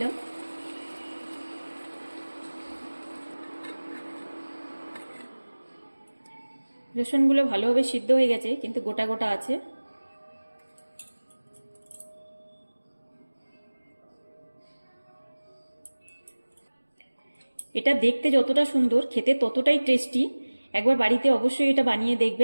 রসুনগুলো ভালোভাবে সিদ্ধ হয়ে গেছে, কিন্তু গোটা গোটা আছে। এটা দেখতে যতটা সুন্দর, খেতে ততটাই টেস্টি। একবার বাড়িতে অবশ্যই এটা বানিয়ে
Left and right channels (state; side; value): inverted; both; correlation -1.00